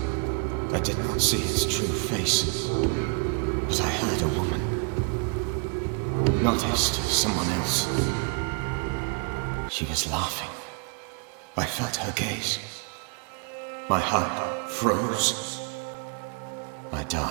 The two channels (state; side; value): quieter; left; 36.2 dB